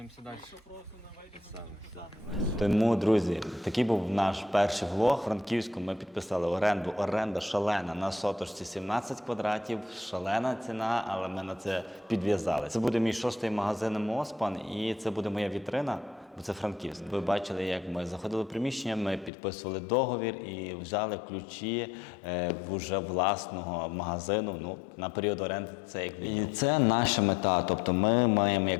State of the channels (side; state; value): right; drops out; at 19.3 s